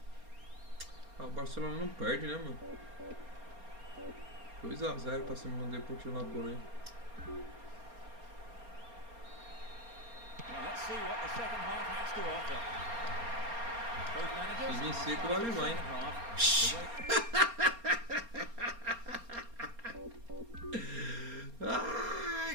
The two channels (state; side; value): late; left; 4.3 ms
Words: Ah, o Barcelona não perde, né, mano? 2-0 pra cima do Deportivo La Coruña. Well, let's see what the second half has to offer. Both managers Se vir are seco, starting vai the levar, hein? second half.